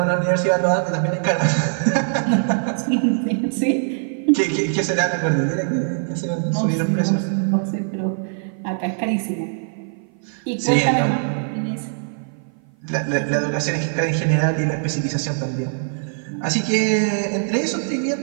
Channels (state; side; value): silent; left; 55 dB below the other